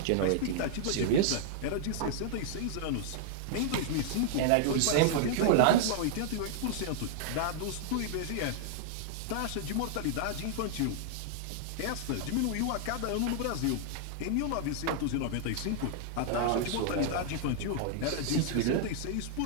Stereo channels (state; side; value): different; both; correlation -0.01